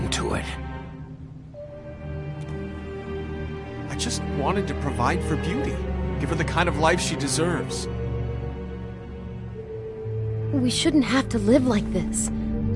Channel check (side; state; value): both; identical; correlation 1.00